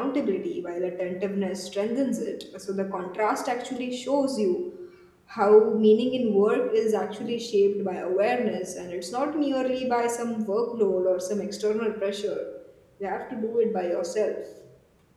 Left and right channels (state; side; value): identical; both; correlation 1.00